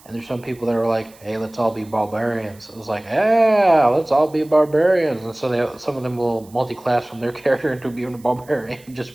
and there's some people that are like, hey, let's all be barbarians. It was like, yeah, let's all be barbarians, and so some of them will multi-class from their character into being a barbarian just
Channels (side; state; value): right; noise; hiss, 26 dB below the sound